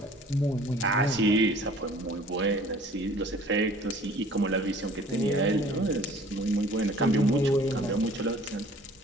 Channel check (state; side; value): normal; both; correlation 0.51